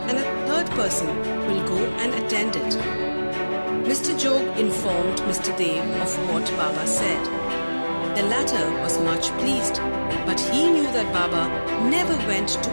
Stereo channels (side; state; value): both; inverted; correlation -1.00